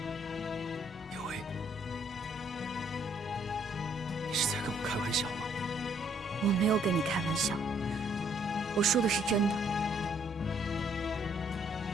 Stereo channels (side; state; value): both; normal; correlation 0.66